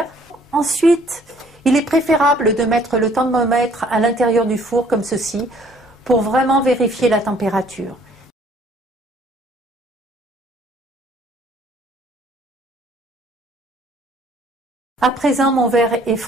Ensuite, il est préférable de mettre le thermomètre à l'intérieur du four comme ceci pour vraiment vérifier la température. À présent, mon verre est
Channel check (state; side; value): normal; both; correlation 0.60